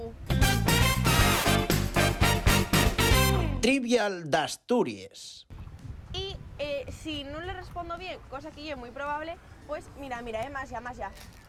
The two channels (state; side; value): identical; both; correlation 1.00